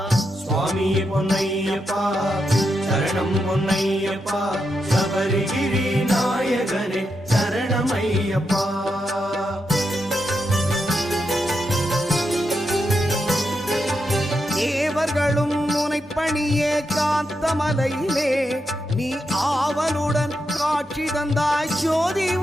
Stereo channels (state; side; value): normal; both; correlation 0.84